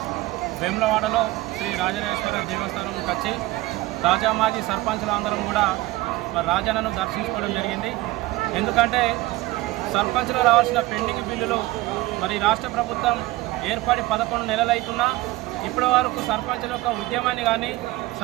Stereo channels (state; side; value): quieter; left; 19.1 dB